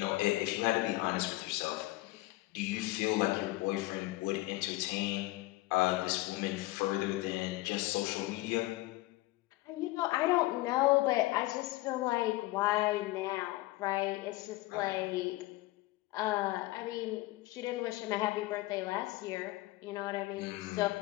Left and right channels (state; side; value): quieter; right; 19.3 dB